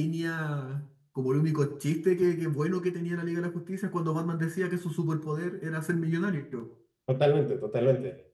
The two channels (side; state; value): both; identical; correlation 1.00